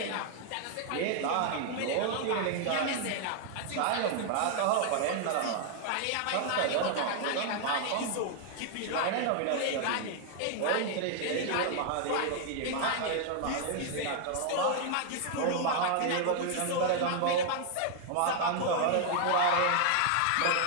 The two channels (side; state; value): both; different; correlation 0.00